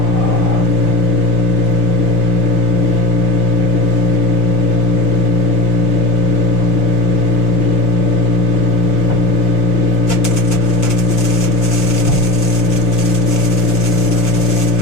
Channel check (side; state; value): right; late; 6.2 ms